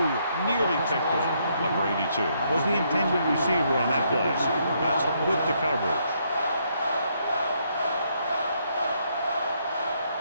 nearly picked off. Number 82 was the intended receiver on that play. That's with the coverage.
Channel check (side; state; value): both; inverted; correlation -0.73